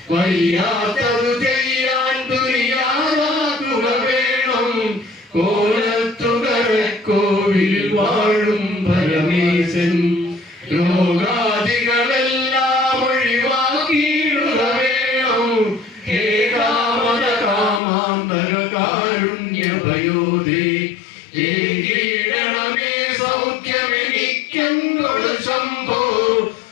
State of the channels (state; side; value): drops out; right; at 17.8 s